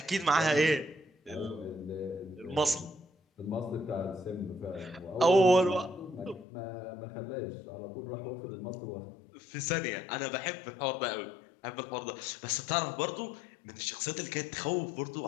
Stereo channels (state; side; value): drops out; right; at 6.5 s